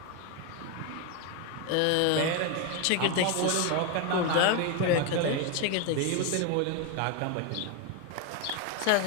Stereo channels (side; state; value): both; different; correlation 0.02